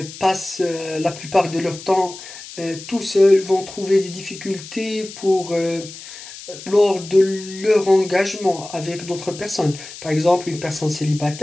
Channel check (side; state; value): left; noise; hiss, 14 dB below the sound